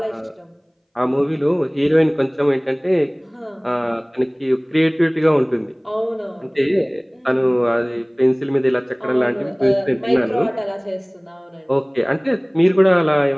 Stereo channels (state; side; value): identical; both; correlation 1.00